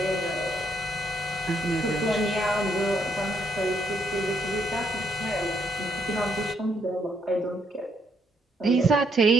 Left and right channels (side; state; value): both; normal; correlation 0.73